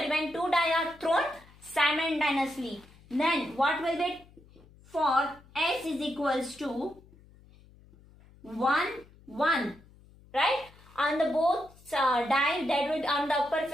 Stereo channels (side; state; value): left; noise; hum, 25 dB below the sound